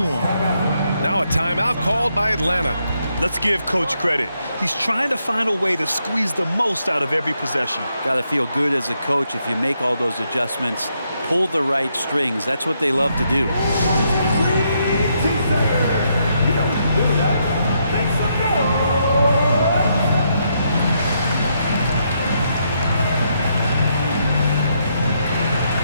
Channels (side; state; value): both; inverted; correlation -0.77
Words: Now a timeout called by Atlanta. Let's give Coach credit. He's trying to find a way to squeeze the most out of every possession. Got to feel good as a coach if you make all those adjustments, pull the right strings. That's what they love to do.